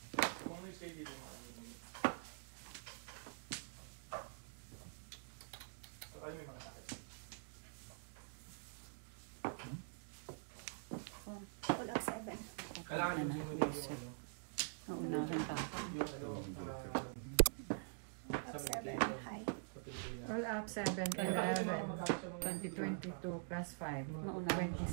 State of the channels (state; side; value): silent; left; digital silence